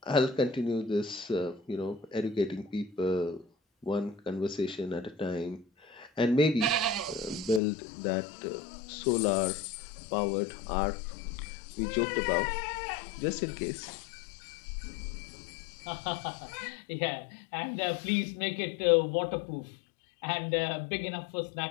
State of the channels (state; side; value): drops out; right; at 7.6 s